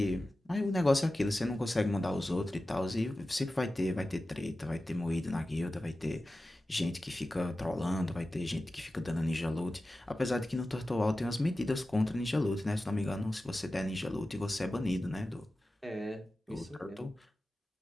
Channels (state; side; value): normal; both; correlation 0.95